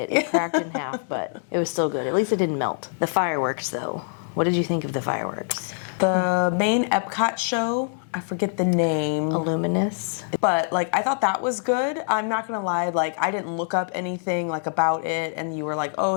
It cracked in half, but it was still good. At least it didn't melt. The fireworks, though. What did you think of the fireworks? The main Epcot show, I forget the name. Illuminous. But, like, I thought that was good. I'm not gonna lie, like, I didn't look up anything, like, about it, and you were like,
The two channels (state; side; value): silent; right; digital silence